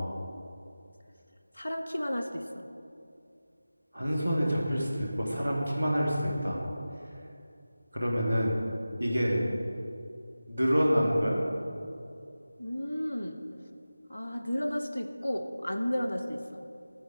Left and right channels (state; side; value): inverted; both; correlation -0.96